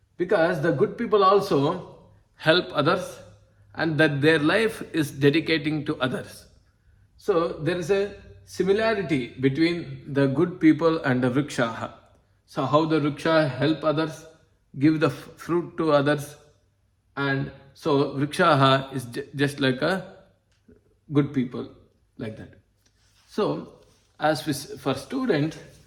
Because the good people also help others and that their life is dedicating to others. So there is a similarity between the good people and the vrikshaha. So how the vriksha help others, give the fruit to others, and so vrikshaha is just like a good people, like that. So as for students,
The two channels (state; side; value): identical; both; correlation 1.00